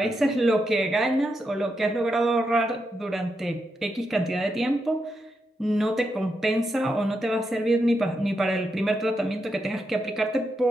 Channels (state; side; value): normal; both; correlation 0.84